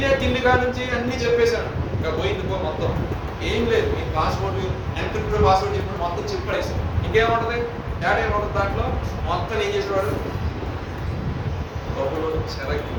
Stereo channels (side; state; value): both; identical; correlation 1.00